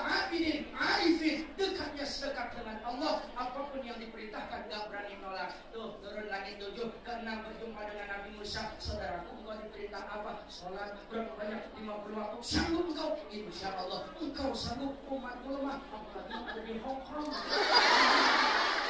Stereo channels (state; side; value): identical; both; correlation 1.00